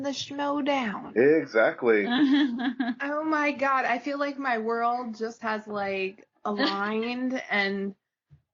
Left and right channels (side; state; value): both; identical; correlation 1.00